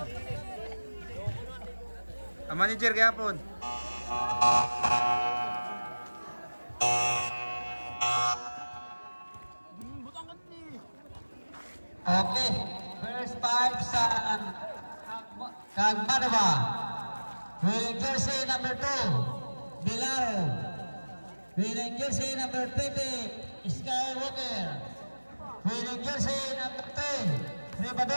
Ang manager kayapon. Okay, first five sa Kagmanova. Winning jersey number 2, Bilaro. Winning jersey number 20, Skywalker. Winning jersey number 10,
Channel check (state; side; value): inverted; both; correlation -1.00